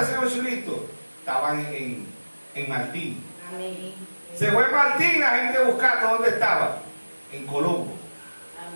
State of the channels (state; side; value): inverted; both; correlation -1.00